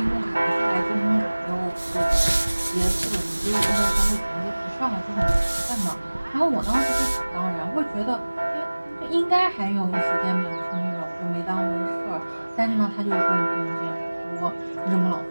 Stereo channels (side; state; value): both; inverted; correlation -1.00